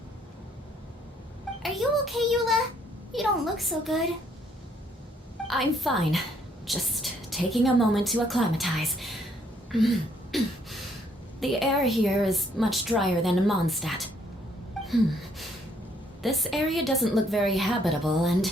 Are you okay, Eula? You don't look so good. I'm fine. Just taking a moment to acclimatize. The air here is much drier than in Mondstadt. This area doesn't look very habitable,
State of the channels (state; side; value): normal; both; correlation 0.68